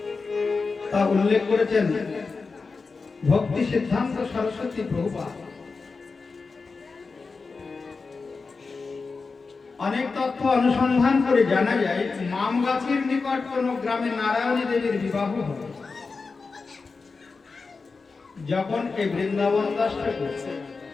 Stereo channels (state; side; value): quieter; right; 4.4 dB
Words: তা উল্লেখ করেছেন ভক্তি সিদ্ধান্ত সরস্বতী প্রভুপাদ। অনেক তথ্য অনুসন্ধান করে জানা যায় মামগাছির নিকট কোন গ্রামে নারায়ণী দেবীর বিবাহ হয়। যখন এই বৃন্দাবন দাস ঠাকুর